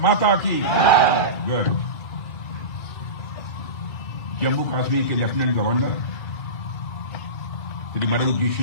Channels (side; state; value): right; late; 2.3 ms